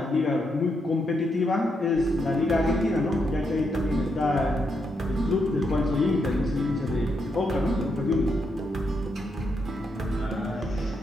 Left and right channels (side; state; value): both; normal; correlation 0.80